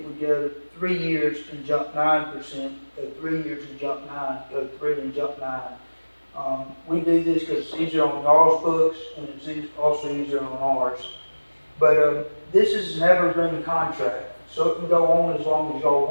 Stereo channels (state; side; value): inverted; both; correlation -1.00